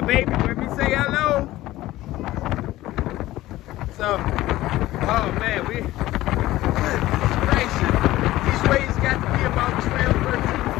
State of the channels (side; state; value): right; quieter; 16.3 dB